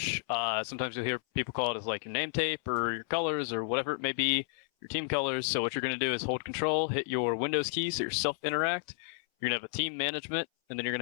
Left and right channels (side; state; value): right; silent; 57 dB below the other